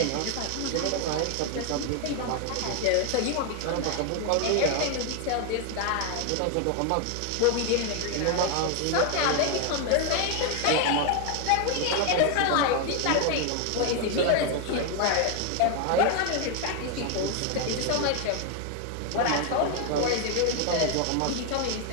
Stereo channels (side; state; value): both; different; correlation 0.01